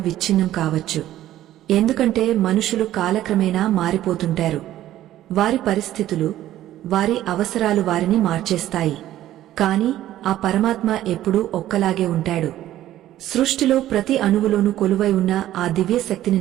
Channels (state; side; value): quieter; left; 13.4 dB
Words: కావచ్చు. ఎందుకంటే మనుషులు కాలక్రమేణా మారిపోతుంటారు. వారి పరిస్థితులు, వారి అవసరాలు వారిని మార్చేస్తాయి. కాని ఆ పరమాత్మ ఎప్పుడూ ఒక్కలాగే ఉంటాడు. సృష్టిలో ప్రతి అణువులోనూ కొలువై ఉన్న ఆ దివ్యశక్తిని